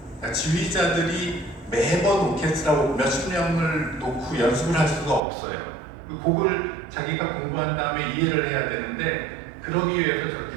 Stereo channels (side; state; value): left; drops out; at 5.2 s